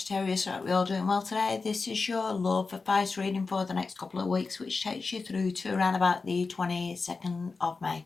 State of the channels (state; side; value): quieter; right; 4.2 dB